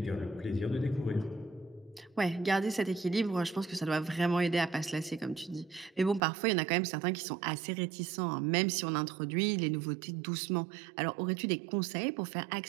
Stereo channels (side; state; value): left; drops out; at 6.2 s